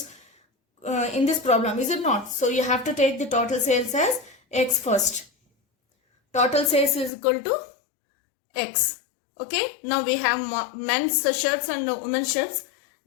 problem, is it not? So you have to take the total sales as X first. Total sales is equal to X. Okay. Now we have men's shirts and women's shirts.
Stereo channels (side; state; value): right; drops out; at 7.1 s